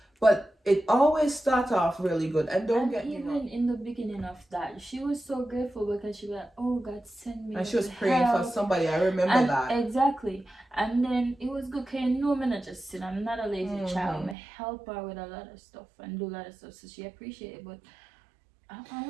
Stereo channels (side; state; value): left; drops out; at 14.4 s